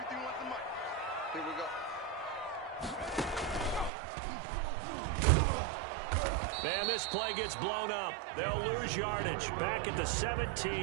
Here we go. And this play gets blown up. They'll lose yardage. Back at the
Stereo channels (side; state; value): left; drops out; at 3.9 s